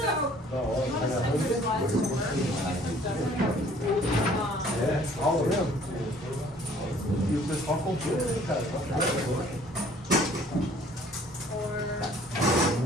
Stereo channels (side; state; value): both; normal; correlation 0.56